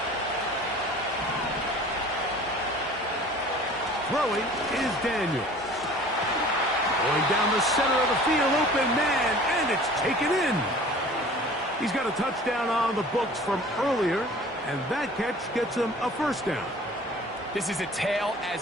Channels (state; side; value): normal; both; correlation 0.46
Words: Throwing is Daniel. Going down the center of the field, open man, and it's taken in. He's got a touchdown on the books from earlier, and that catch gets him a 1st down. This is a tale